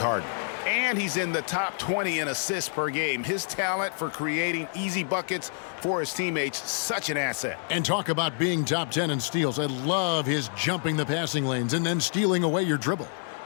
And he's in the top 20 in assists per game. His talent for creating easy buckets for his teammates, such an asset. And talk about being top 10 in steals. I love his jumping the passing lanes and then stealing away your dribble.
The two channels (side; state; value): right; silent; digital silence